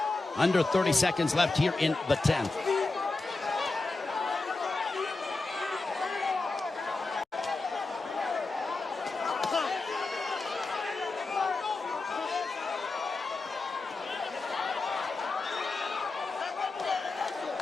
Under 30 seconds left here in the 10th.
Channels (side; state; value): right; quieter; 3.5 dB